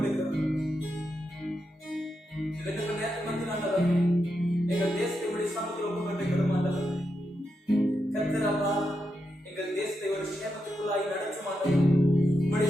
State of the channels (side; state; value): both; normal; correlation 0.85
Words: இதற்கு நேரத்தில் வந்து ஆண்டவரே, எங்கள் தேசத்தை இப்படி சமூகத்தில் ஒப்புக்கொண்டிருக்கிறோம் ஆண்டவரே. கர்த்தர் அப்பா, எங்கள் தேசத்தை ஒரு சேமத்துக்குள்ளாய் நடத்த மாட்டோம், உங்களுடைய